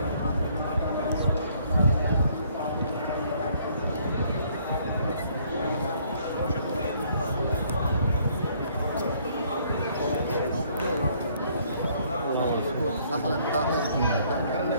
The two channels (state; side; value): inverted; both; correlation -0.64